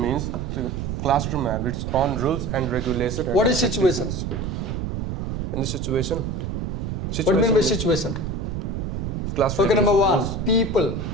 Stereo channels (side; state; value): right; noise; rumble, 3 dB below the sound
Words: the classroom have its own rules and regulations. What is situation? In the situation? What do you mean by situation? Classroom. Okay, number one, rules. people.